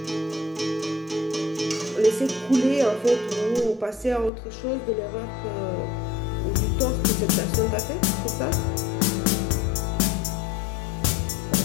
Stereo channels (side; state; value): right; drops out; at 4.3 s